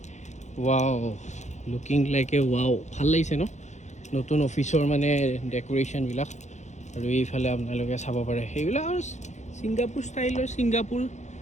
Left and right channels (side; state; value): right; late; 0.34 ms